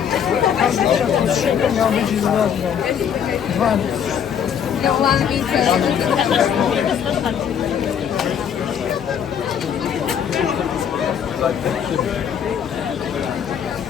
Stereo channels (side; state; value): right; quieter; 8.2 dB